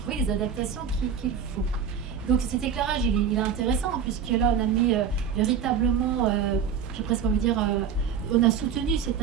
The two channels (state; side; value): quieter; left; 7.3 dB